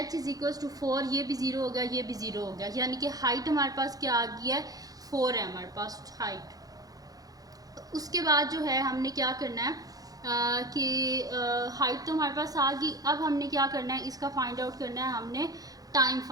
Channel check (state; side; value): late; left; 0.18 ms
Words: = 4, ये भी 0 हो गया, ये भी 0 हो गया, यानी कि हाइट हमारे पास क्या आ गई है 4 है हमारे पास हाइट। उसके बाद जो है हमने क्या करना है कि हाइट तो हमारे पास आ गई। अब हमने क्या करना है, इसका फाइंड आउट करना है, हमने टाइम